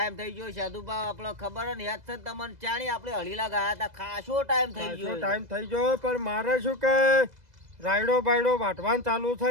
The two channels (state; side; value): late; left; 2.0 ms